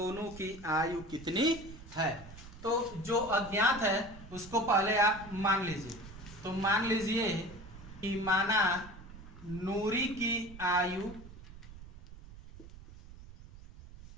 की आयु कितनी है। तो जो अज्ञात है उसको पहले आप मान लीजिए। तो मान लीजिए कि माना नूरी की आयु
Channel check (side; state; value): right; noise; rumble, 16 dB below the sound